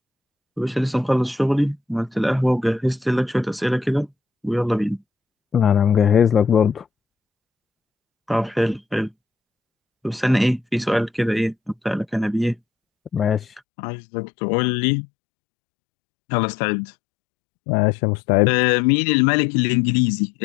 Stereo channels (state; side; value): drops out; right; at 13.6 s